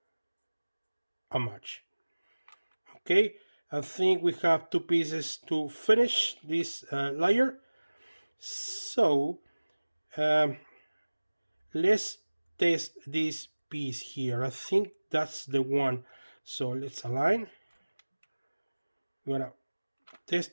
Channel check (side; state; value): both; inverted; correlation -1.00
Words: a match. Okay, I think we have two pieces to finish this layer. So let's test this piece here. I think that's the one. So let's align. We're gonna